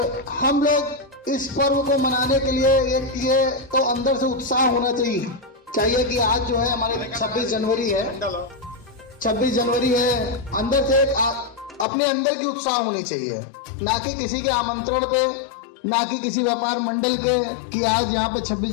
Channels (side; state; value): right; drops out; at 11.9 s